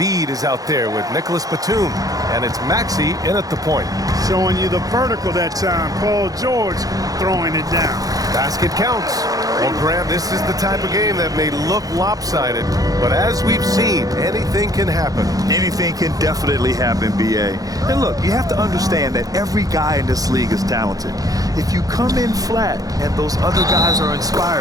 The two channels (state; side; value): late; left; 0.17 ms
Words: is out there with Nicholas Batum. And it's Maxey in at the point. Showing you the vertical that time. Paul George throwing it down. Basket counts. Well, Graham, this is the type of game that may look lopsided, but as we've seen, anything can happen. Anything can definitely happen, B.A. And look, you have to understand that every guy in this league is talented. If you come in flat and those other guys are